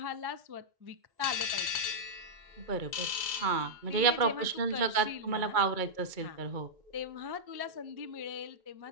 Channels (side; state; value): left; late; 2.3 ms